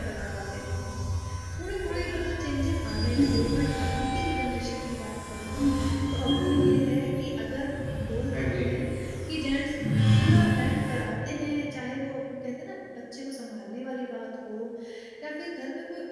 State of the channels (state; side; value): identical; both; correlation 1.00